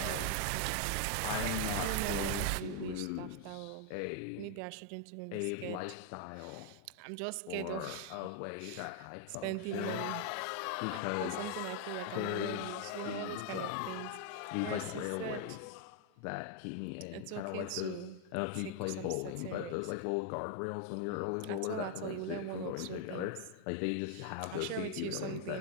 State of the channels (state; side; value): different; both; correlation 0.00